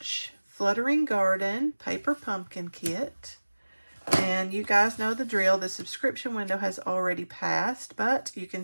Fluttering Garden Paper Pumpkin Kit. And you guys know the drill. The subscription window has already passed, but you can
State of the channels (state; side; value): inverted; both; correlation -1.00